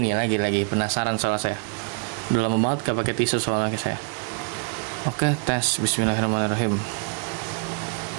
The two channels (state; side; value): quieter; left; 38.4 dB